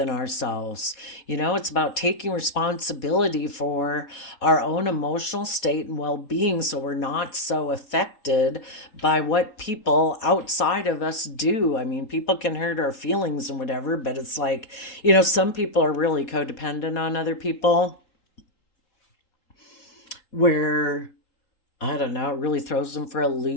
ourselves. It's about taking responsibility for our own emotional state and well-being so we're not so affected by what people outside of us do. I mean, people can hurt our feelings and whatever, but it's like, some people are really codependent on other people where I don't know, it really throws them for a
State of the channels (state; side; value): late; right; 4.2 ms